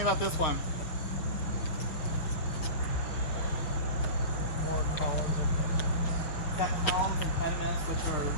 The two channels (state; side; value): late; right; 6.9 ms